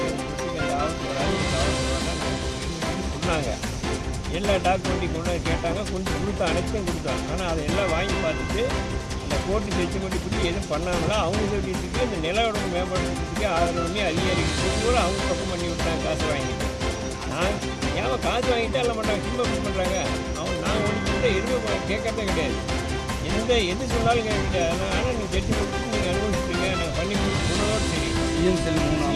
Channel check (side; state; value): both; identical; correlation 1.00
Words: அந்த ஆபத்து வராது சொன்னாங்க. எல்லா டாக்குமெண்ட்டையும் கொண்டு கேட்டாங்க, கொஞ்சம் கொடுத்தோம், அனைத்தும் கொடுத்தோம். ஆனால் அதை எல்லாம் வாங்கி பார்த்துட்டு அந்த கோர்ட்டு ஜட்ஜ்மெண்ட் இப்படி எதுவும் பண்ணாங்களா அவங்க சொல்லிட்டு இந்த நிலவோட மேம்படுறதுக்கு ஆதரவுமே அதிகாரிகள் கூட அவங்க பக்கம் பண்ணி விட்டாங்க. காசு வாங்கிட்டு ஏன் காசு வாங்கிட்டு எல்லாம் மாட்டாங்க, சிம்ப பண்ணுறாங்க. நாங்கள் ஒன்று எதுவுமே கேட்கறதே கிடையாது, எது சொன்னாலும் கேட்க கிடையாது. ஆனால் நீங்கள் ஜட்ஜ்மெண்ட் நீங்கள் அனுபவிச்சுட்டீங்க, நாங்கள் பண்ணி கொடுத்தோடு சரி.